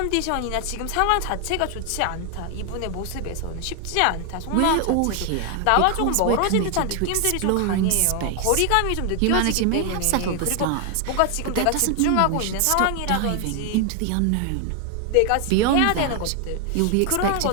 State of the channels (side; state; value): both; different; correlation 0.00